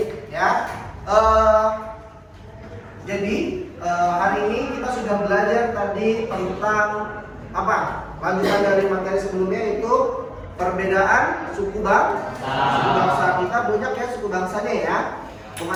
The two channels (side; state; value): both; identical; correlation 1.00